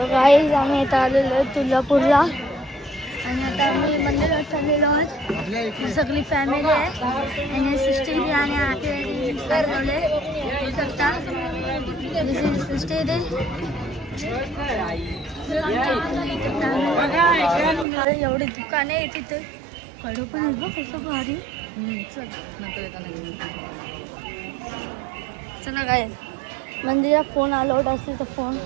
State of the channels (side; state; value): left; drops out; at 17.9 s